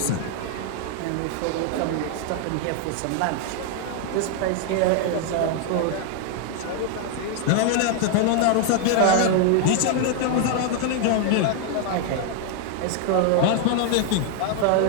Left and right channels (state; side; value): different; both; correlation 0.00